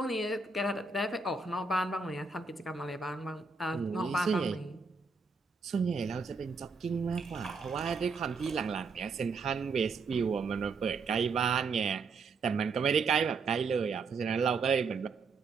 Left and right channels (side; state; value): left; quieter; 4.5 dB